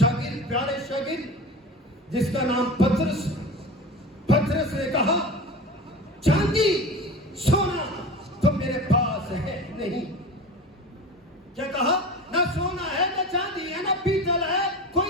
प्यारे शागिर्द जिसका नाम पतरस, पतरस ने कहा, चांदी सोना तो मेरे पास है नहीं। क्या कहा? ना सोना है, ना चांदी है, ना पीतल है,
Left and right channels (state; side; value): normal; both; correlation 0.32